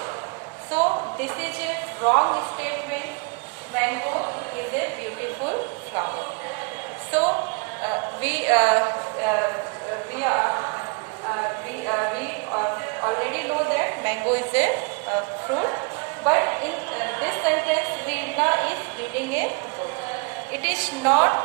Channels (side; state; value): left; quieter; 33.3 dB